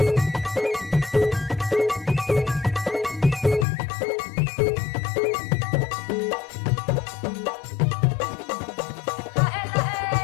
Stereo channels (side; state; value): right; drops out; at 3.7 s